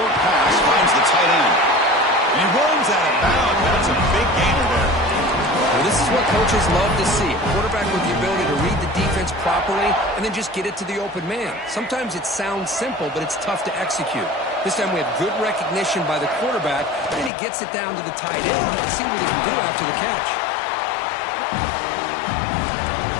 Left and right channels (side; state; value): right; drops out; at 17.3 s